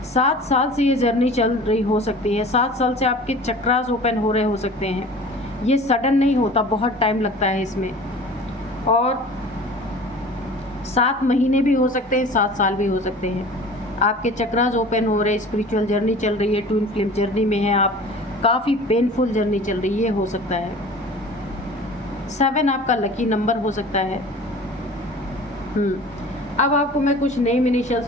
7 साल से ये जर्नी चल रही हो सकती है। 7 साल से आपके चक्रास ओपन हो रहे हो सकते हैं। ये सडन नहीं होता, बहुत टाइम लगता है इसमें। और 7 महीने भी हो सकते हैं, 7 साल भी हो सकते हैं। आपके चक्रास ओपन हो रहे, स्पिरिचुअल जर्नी चल रही है, ट्विन फ्लेम जर्नी में है आप, काफ़ी पेनफुल जर्नी चल रही है, हो सकता है। 7 आपका लकी नंबर हो सकता है। अब आपको मैं कुछ नेम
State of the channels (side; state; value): both; normal; correlation 0.42